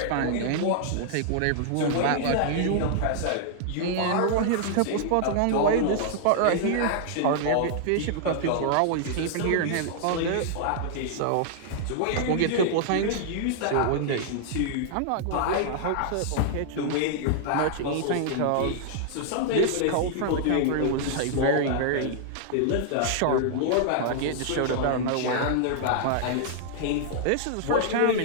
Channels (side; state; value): both; different; correlation -0.01